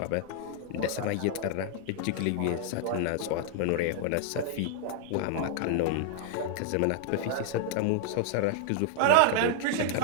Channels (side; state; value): both; different; correlation -0.01